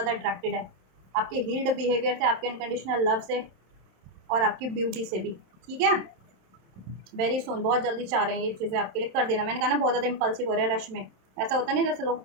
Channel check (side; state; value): left; late; 27 ms